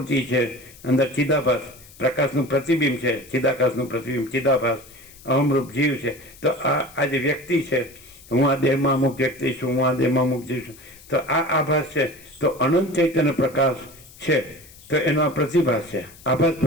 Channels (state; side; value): noise; left; hiss, 22 dB below the sound